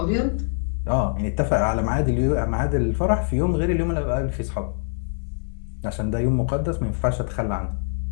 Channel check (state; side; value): silent; right; digital silence